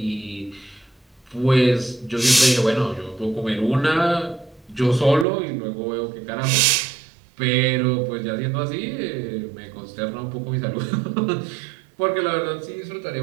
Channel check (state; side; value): drops out; left; at 5.2 s